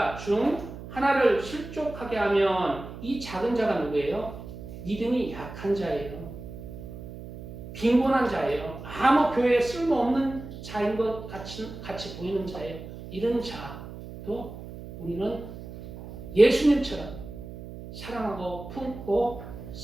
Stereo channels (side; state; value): right; noise; hum, 12 dB below the sound